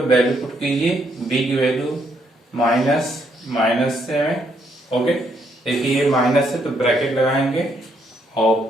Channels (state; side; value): normal; both; correlation 0.73